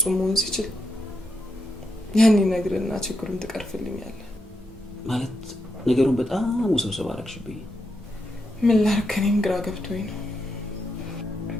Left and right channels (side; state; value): both; normal; correlation 0.83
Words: መሆን ሲችል ያን ይነግርና ችግሩን ትቀርፍልኛለህ ማለት ነገሩን በጣም ውስብስብ አደረግሽብኝ። ምን ላድርግ? እኔም ግራ ገብቶኝ ነው።